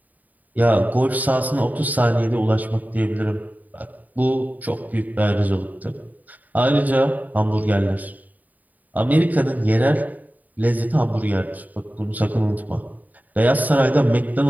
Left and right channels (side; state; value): left; late; 0.079 ms